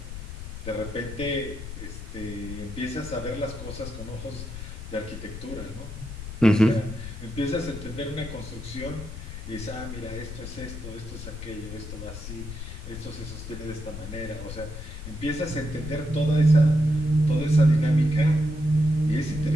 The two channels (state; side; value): noise; left; rumble, 9 dB below the sound